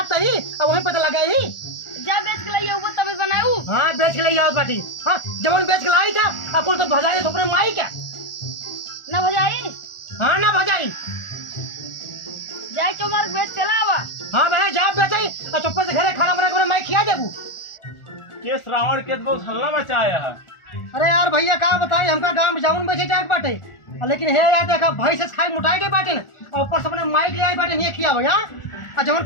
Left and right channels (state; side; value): late; right; 1.4 ms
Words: ही अब वहीं पता लगा ही। जा बेच के लाइए वो तभी बनाऊ। हाँ बेच के ले आओ बाटी। हाँ जब बेच के लाई था अकुल तो भजाई तो अपने माई क्या ना भजाई। हाँ ना भजाई, जाए चुमार बेच चला आवा। हाँ बहन जा बेचाई और चुप्पे से घरे खाना बना कर मैं खिया देबू। के श्रावण के तो बहुत हल्ला मचाया है। अरे यार भैया क्या बताई, हमका गांव में जामुन बेचे जाए बाटे, लेकिन हे यार देखा भाई से खाई मुटाई के बाटे न, और ऊपर से अपने माइक ले आई बाटे नहीं खिया भैया। और जब